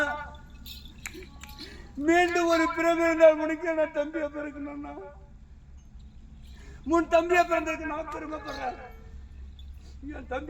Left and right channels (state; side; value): identical; both; correlation 1.00